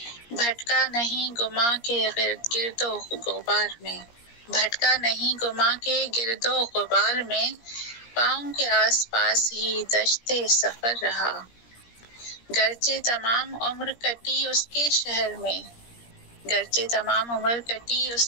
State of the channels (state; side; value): late; right; 17 ms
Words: بھٹکا نہیں گما کے گرد و غبار میں، بھٹکا نہیں گما کے گرد و غبار میں، پاؤں کے آس پاس ہی دشت سفر رہا، گرچہ تمام عمر کٹی اس کے شہر میں، گرچہ تمام عمر کٹی